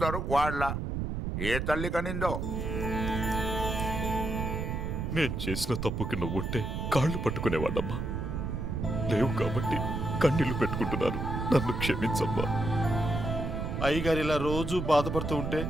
వాళ్ళ. ఏ తల్లి కనిందో. నేను చేసిన తప్పుకి నువ్వుంటే కాళ్ళు పట్టుకునేవాడమ్మా. లేవు కాబట్టి కన్నీళ్లు పెట్టుకుంటున్నాను. నన్ను క్షమించమ్మా. అయ్యగారు ఇలా రోజు బాధపడుతూ ఉంటే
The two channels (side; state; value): right; noise; rumble, 3 dB below the sound